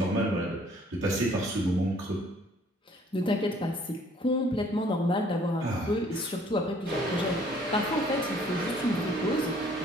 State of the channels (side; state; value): both; normal; correlation 0.59